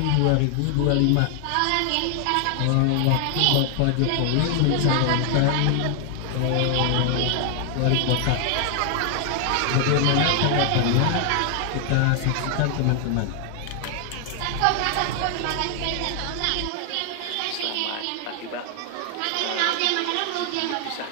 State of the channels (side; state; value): both; different; correlation 0.00